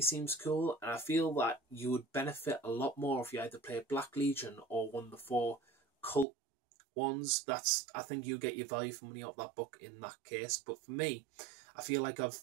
cool, and I feel that you would benefit a lot more if you either play Black Legion or one of the 4 cult ones. I think you get your value for money out of that book in that case. But for me, I feel like it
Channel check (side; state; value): left; drops out; at 6.2 s